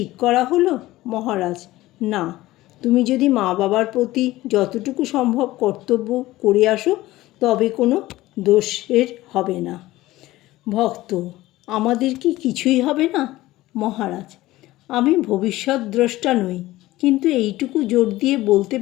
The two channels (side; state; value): right; quieter; 17.3 dB